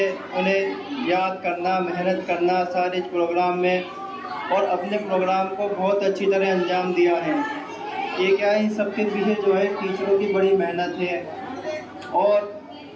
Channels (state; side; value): identical; both; correlation 1.00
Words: उन्हें याद करना, मेहनत करना सारे प्रोग्राम में, और अपने प्रोग्राम को बहुत अच्छी तरह अंजाम दिया है। ये क्या है, इन सबके पीछे जो है टीचरों की बड़ी मेहनत है और